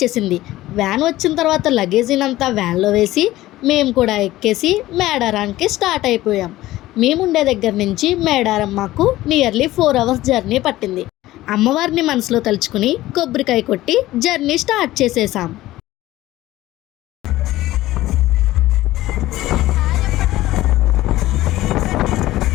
వ్యాన్ వచ్చిన తర్వాత లగేజీనంతా వ్యాన్లో వేసి మేము కూడా ఎక్కేసి మేడారానికి స్టార్ట్ అయిపోయాం. మేముండే దగ్గర నుంచి మేడారం మాకు నియర్లీ 4 అవర్స్ జర్నీ పట్టింది. అమ్మవారిని మనసులో తలుచుకుని కొబ్బరికాయ కొట్టి జర్నీ స్టార్ట్ చేసేసాం.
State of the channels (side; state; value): right; quieter; 16.2 dB